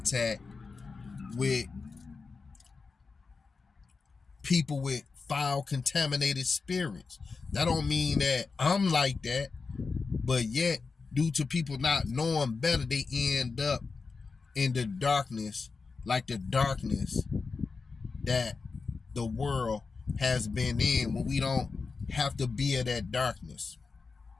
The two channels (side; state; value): right; quieter; 4.5 dB